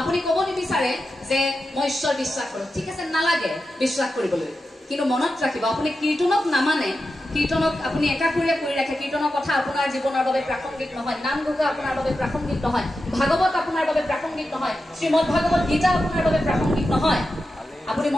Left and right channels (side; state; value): both; normal; correlation 0.90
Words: ক'ব নিবিচাৰে যে মই ঈশ্বৰ বিশ্বাস কৰোঁ ঠিক আছে নালাগে বিশ্বাস কৰিবলৈ কিন্তু মনত ৰাখিব আপুনি কীৰ্তনক নামানে কীৰ্তনক আপুনি একাষৰীয়া কৰি ৰাখে কীৰ্তনৰ কথা আপোনাৰ জীৱনৰ বাবে প্ৰাসংগিক নহয় নাম ঘোষা আপোনাৰ বাবে প্ৰাসংগিক নহয় ভাগৱত আপোনাৰ বাবে প্ৰাসংগিক নহয় শ্ৰীমদ ভাগৱত গীতা আপোনাৰ বাবে প্ৰাসংগিক নহয় আপুনি